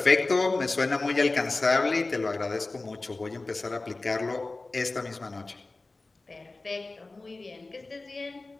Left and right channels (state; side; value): quieter; right; 3.3 dB